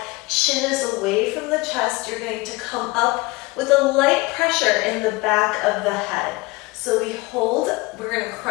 chin is away from the chest. You're going to come up with a light pressure in the back of the head. So we hold, we're going to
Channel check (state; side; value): quieter; right; 23.3 dB